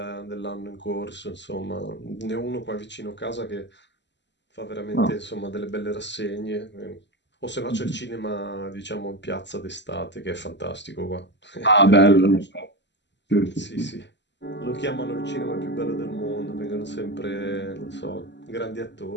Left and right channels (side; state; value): right; late; 0.52 ms